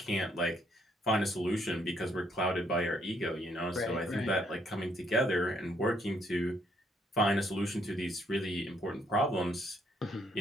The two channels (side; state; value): both; normal; correlation 0.70